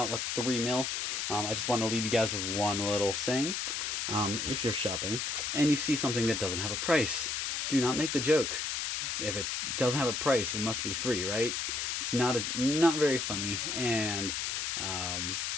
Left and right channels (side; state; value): left; noise; hiss, 1 dB below the sound